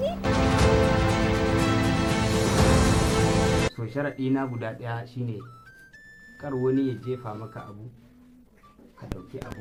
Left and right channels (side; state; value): both; identical; correlation 1.00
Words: To sharaɗi na guda ɗaya shine kar wani ya jefa maka abu ka ɗauki